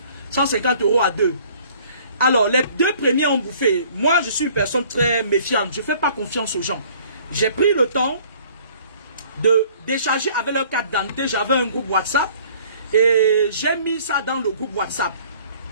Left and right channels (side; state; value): both; inverted; correlation -0.55